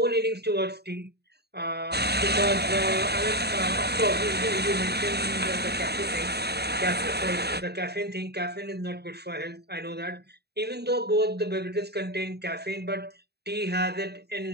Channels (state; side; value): late; left; 0.48 ms